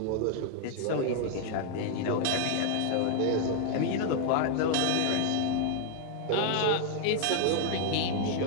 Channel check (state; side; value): different; both; correlation 0.00